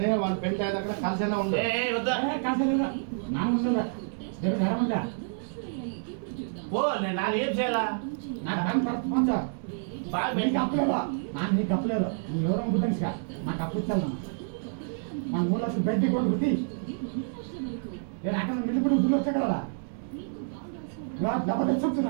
వాళ్ళ పెళ్లి అయిన దగ్గర కలిసేలా ఉండు వద్దా పో నేను నాది ఏం చేయాలా బాగా నీకు అప్పలేదు నీకు అప్పలేదు నువ్వు ఎవరో గుర్తించా నాకు అప్పు ఇచ్చాను మన 3 లక్షలు బెడ్డి కొట్టు గుర్తి నేను అక్కడ మిల్లిపడి దుడ్లు వచ్చా కదా డబ్బు తెచ్చు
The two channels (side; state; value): left; silent; 59 dB below the other